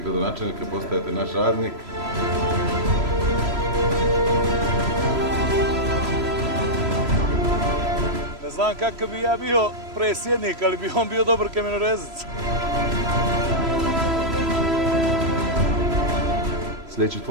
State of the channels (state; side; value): late; left; 3.0 ms